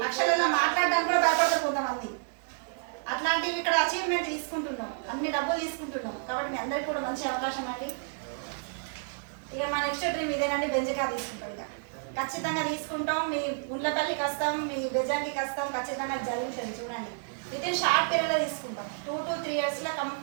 లక్షలలో మాట్లాడడానికి కూడా భయపడతారు కొంతమంది. అట్లాంటివి ఇక్కడ అచీవ్మెంట్ తీసుకుంటున్నాం, అన్ని డబ్బులు తీసుకుంటున్నాం. కాబట్టి మీ అందరికీ కూడా మంచి అవకాశం అండి. ఇక మా నెక్స్ట్ డ్రీమ్ ఇదేనండి, బెంజ్ కార్ తీసుకుంటాం. ఇక ఖచ్చితంగా తీసుకుంటాం. మీ ముళ్ళపల్లికి వస్తాం, మీ బెజాంగికి వస్తాం, ఖచ్చితంగా జరుగుతుంది. చూడండి, ఇదే షార్ట్ పీరియడ్లో తీసుకుంటాం. 2 to 3 yearsలో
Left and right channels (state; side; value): silent; left; digital silence